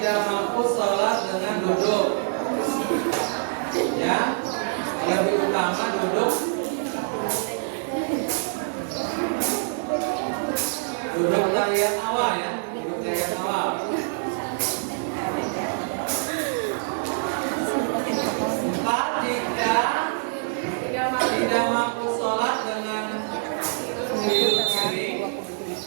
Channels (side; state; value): left; silent; digital silence